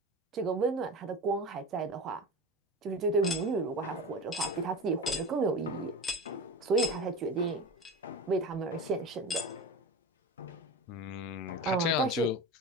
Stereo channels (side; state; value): both; normal; correlation 0.29